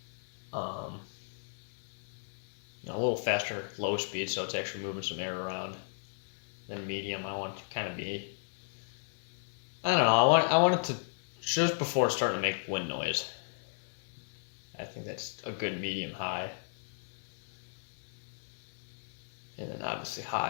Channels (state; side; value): silent; right; digital silence